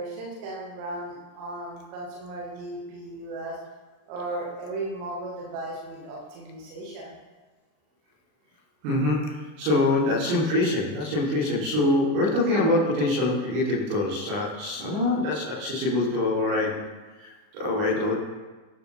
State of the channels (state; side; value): late; left; 40 ms